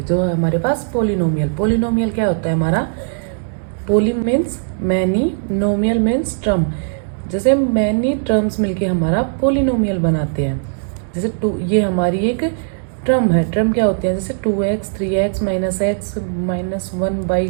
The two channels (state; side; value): silent; left; digital silence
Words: जो है हमारे पास पोलिनोमियल। पोलिनोमियल क्या होता है हमारा? पोली मीन्स मैनी, नोमियल मीन्स टर्म। जैसे मैनी टर्म्स मिलके हमारा पोलिनोमियल बनाते हैं। जैसे टू, ये हमारी एक टर्म है। टर्म क्या होते हैं? जैसे 2x, 3x, -x,